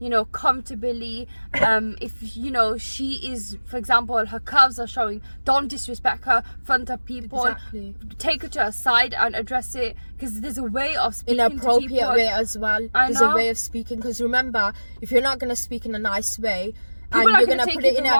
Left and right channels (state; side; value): inverted; both; correlation -1.00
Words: know, comfortably. If, you know, she is, for example, her curves are showing, don't disrespect her in front of people. Exactly. Take her to her side and address it, because there's a way of speaking to Inappropriate people. way as well. I There's know. a way of speaking, because remember, if you're not going to speak in a nice way, People and are you're gonna gonna take put it it in the a